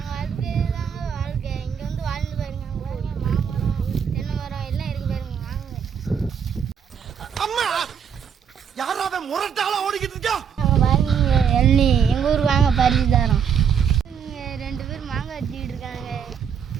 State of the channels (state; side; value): quieter; left; 7.5 dB